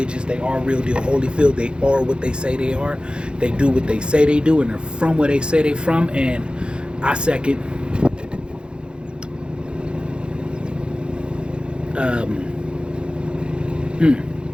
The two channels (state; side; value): late; left; 0.053 ms